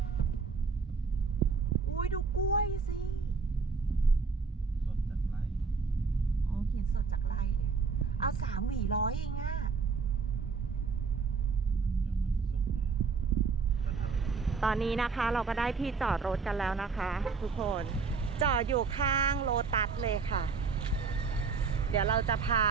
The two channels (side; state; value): left; quieter; 5.0 dB